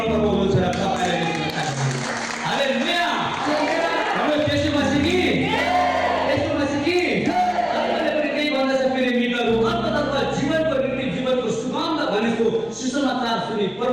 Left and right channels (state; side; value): noise; left; rumble, 28 dB below the sound